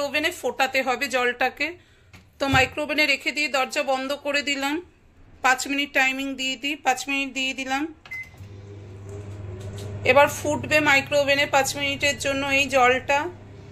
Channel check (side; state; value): both; identical; correlation 1.00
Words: ওভেনে ফোটাতে হবে জলটাকে। তো মাইক্রো ওভেনে রেখে দিয়ে দরজা বন্ধ করে দিলাম। 5 মিনিট টাইমিং দিয়ে দিই, 5 মিনিট দিয়ে দিলাম। এবার ফুটবে মাইক্রো ওভেনে 5 মিনিটের জন্য এই